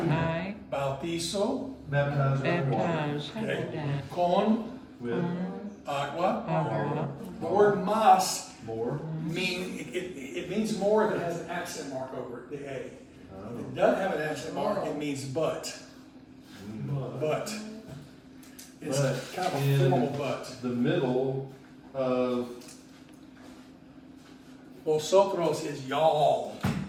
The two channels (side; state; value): both; identical; correlation 1.00